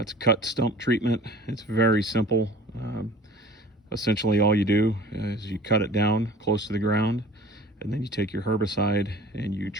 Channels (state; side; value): normal; both; correlation 0.45